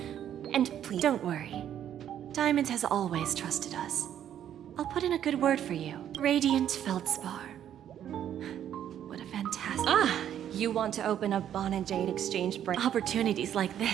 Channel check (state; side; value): quieter; left; 10.3 dB